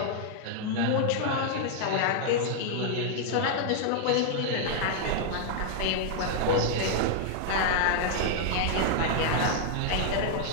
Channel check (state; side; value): different; both; correlation 0.00